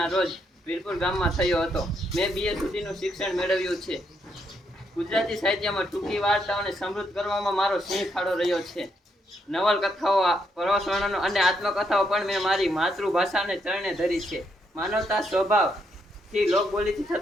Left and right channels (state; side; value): normal; both; correlation 0.77